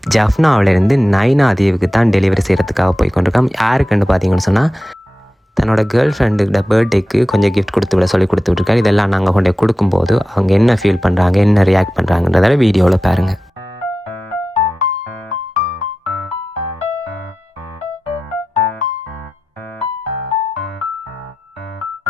ஜஃப்னாவிலேருந்து நைனா தீவுக்கு தான் டெலிவரி செய்கிறதுக்காக போய் கொண்டிருக்கோம். யாருக்குன்னு பார்த்தீங்கன்னு சொன்னால், தன்னோட கேர்ள் ஃப்ரெண்டுக்கிட்ட பர்த்டேக்கு கொஞ்சம் கிஃப்ட் கொடுத்து விட சொல்லி கொடுத்து விட்ருக்காரு. இதெல்லாம் நாங்கள் கொண்டு கொடுக்கும்போது அவங்க என்ன ஃபீல் பண்ணுறாங்க, என்ன ரியாக்ட் பண்ணுறாங்கன்றதால வீடியோவில் பாருங்கள்.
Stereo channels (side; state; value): both; normal; correlation 0.93